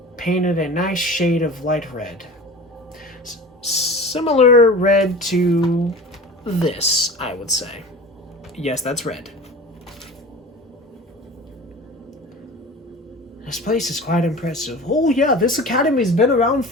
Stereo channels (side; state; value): both; normal; correlation 0.37